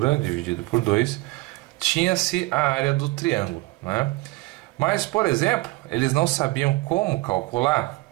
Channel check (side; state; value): left; quieter; 21.7 dB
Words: dividido por 2, tinha-se a área do triângulo, né? Mas, por exemplo, eles não sabiam como calcular